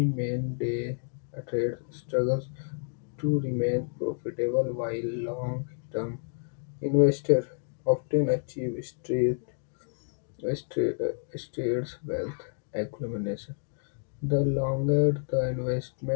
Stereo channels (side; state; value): right; silent; digital silence